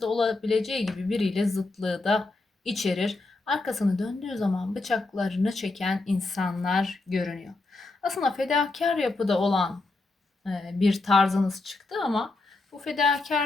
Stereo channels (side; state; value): right; quieter; 3.2 dB